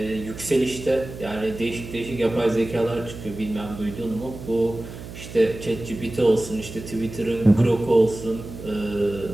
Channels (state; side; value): noise; right; hum, 12 dB below the sound